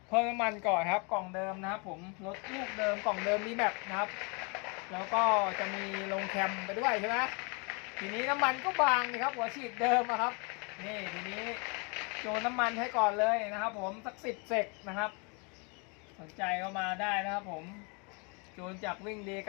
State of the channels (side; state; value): right; quieter; 32.7 dB